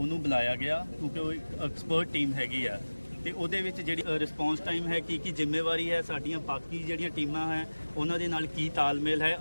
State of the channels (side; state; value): both; inverted; correlation -1.00